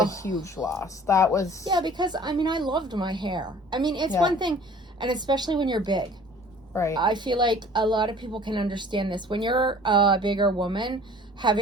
a huge loss. That was. Yeah, because I mean, I loved my hair. I mean, it's Yeah. one thing, and especially when you're big. Right. I feel like a lot of people can understand this. When you're a bigger woman,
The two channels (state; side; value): normal; both; correlation 0.49